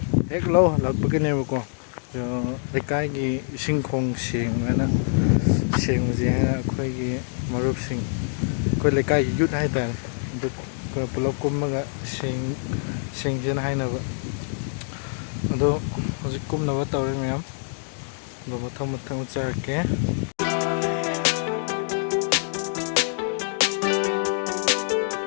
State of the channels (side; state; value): right; silent; digital silence